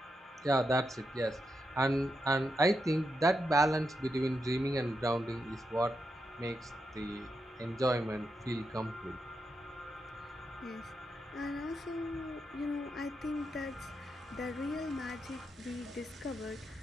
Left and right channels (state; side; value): normal; both; correlation 0.85